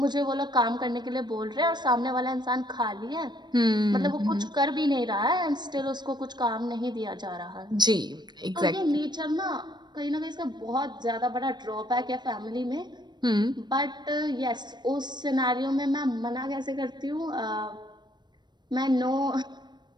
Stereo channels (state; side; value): late; left; 0.21 ms